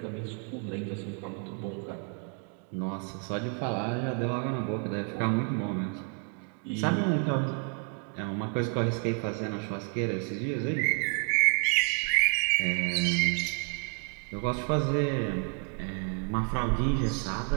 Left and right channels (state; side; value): quieter; left; 37.4 dB